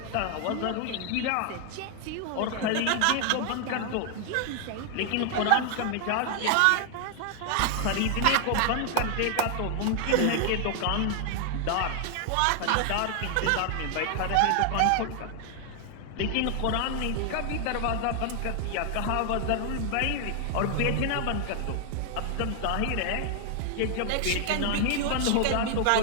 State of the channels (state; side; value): different; both; correlation 0.00